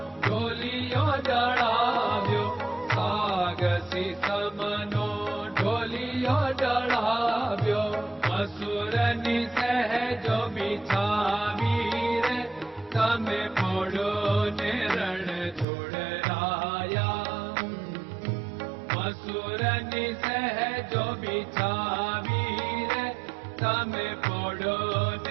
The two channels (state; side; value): drops out; left; at 15.7 s